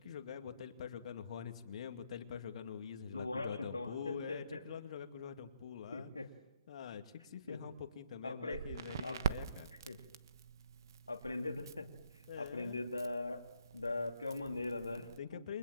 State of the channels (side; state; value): both; inverted; correlation -0.76